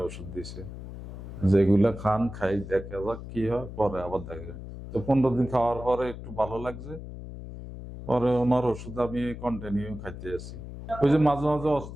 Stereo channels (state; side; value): noise; left; hum, 11 dB below the sound